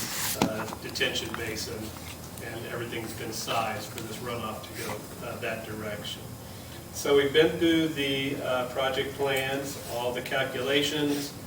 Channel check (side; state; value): both; identical; correlation 1.00